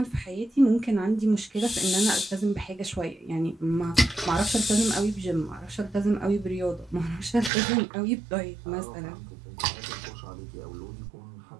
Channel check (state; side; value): drops out; left; at 7.5 s